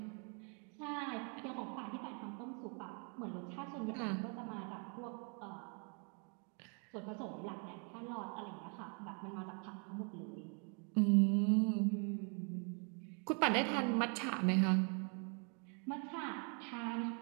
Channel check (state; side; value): quieter; left; 37.8 dB